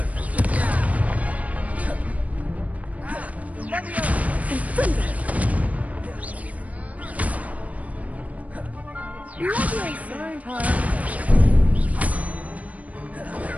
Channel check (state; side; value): late; left; 0.069 ms